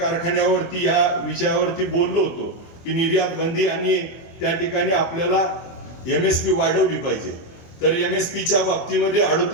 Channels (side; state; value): right; late; 24 ms